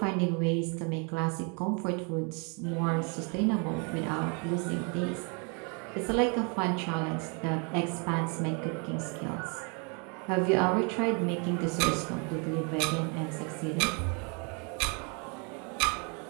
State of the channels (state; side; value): quieter; left; 34.9 dB